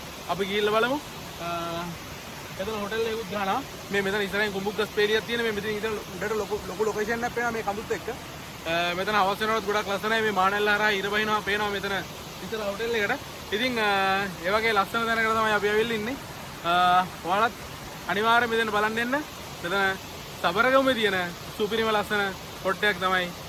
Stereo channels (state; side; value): identical; both; correlation 1.00